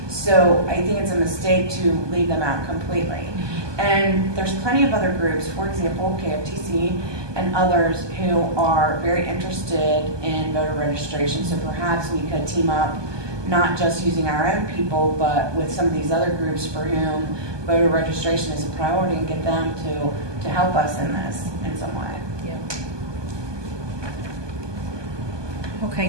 So I think it's a mistake to leave them out completely. And there's plenty of other groups, for example, KFTC and others, who are very interested in voter registration. So perhaps we could team up, not just using our own people, but with some of these other groups for whom voter registration is a priority, and get them to help us in this in some way. Okay,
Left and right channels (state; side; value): late; left; 1.2 ms